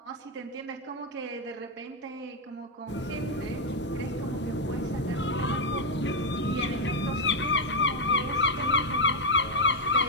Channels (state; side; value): normal; both; correlation 0.02